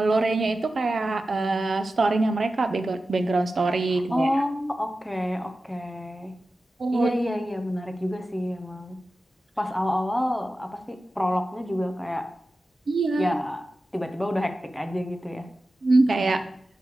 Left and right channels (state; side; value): normal; both; correlation 0.94